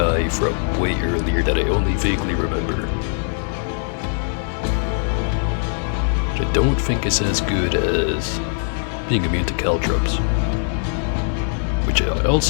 from way earlier that I only vaguely remember. Which I don't think is as good as being immune to caltrops. Which I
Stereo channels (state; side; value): silent; right; digital silence